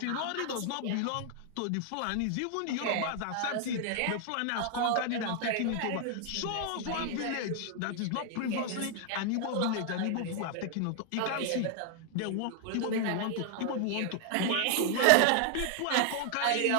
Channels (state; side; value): different; both; correlation 0.00